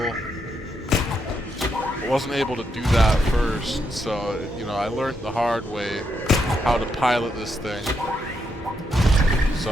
I wasn't able to do that first, so, you know, I learned the hard way how to pilot this thing.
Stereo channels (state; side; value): normal; both; correlation 0.80